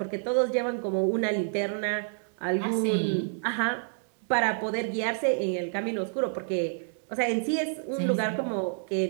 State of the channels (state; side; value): silent; left; 59 dB below the other